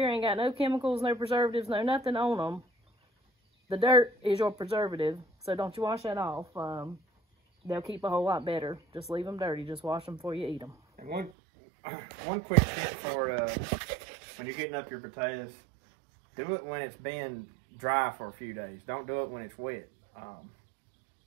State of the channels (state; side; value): drops out; left; at 11.3 s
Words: ain't got no chemicals, no preservatives, no nothing on them. The dirt is your preservative, so don't you wash that off. They'll keep a whole lot better. Just leave them dirty. Just wash them before you eat them. And one quick tip for when you're getting up your potatoes, do it when it's been dry for a few days. Don't do it when it's wet.